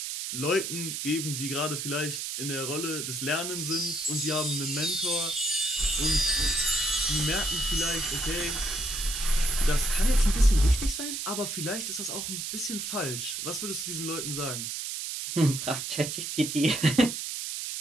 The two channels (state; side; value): noise; right; hiss, 4 dB below the sound